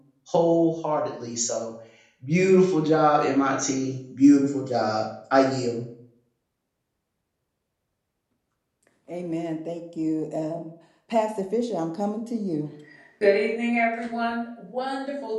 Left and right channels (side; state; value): both; identical; correlation 1.00